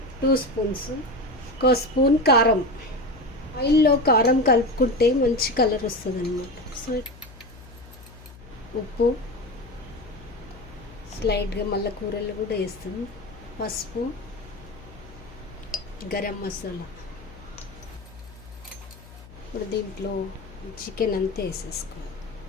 2 స్పూన్స్. 1 స్పూన్ కారం. ఆయిల్లో కారం కలుపుకుంటే మంచి కలర్ వస్తుంది అనమాట. సో ఉప్పు స్లైడ్గా మళ్ళీ కూరల్లో కూడా వేస్తాం. పసుపు, గరం మసాలా. ఇప్పుడు దీంట్లో చికెన్ అంతా వేసేసుకోవాలి.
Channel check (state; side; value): noise; left; hum, 19 dB below the sound